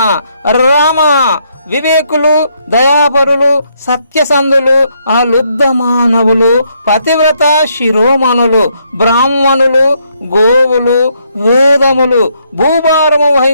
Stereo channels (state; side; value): inverted; both; correlation -0.74